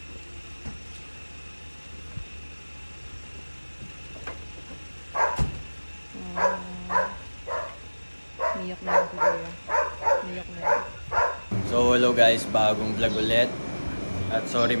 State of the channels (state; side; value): inverted; both; correlation -1.00